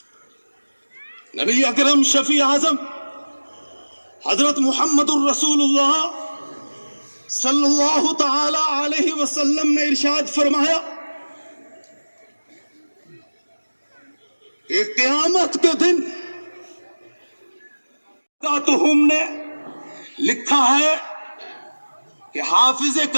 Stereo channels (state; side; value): inverted; both; correlation -1.00